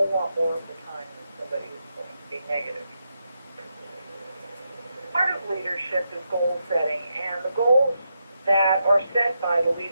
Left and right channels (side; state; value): both; inverted; correlation -0.83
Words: lot more of the time than somebody who's going to be negative. Part of leadership is goal setting, and the goals that are set by the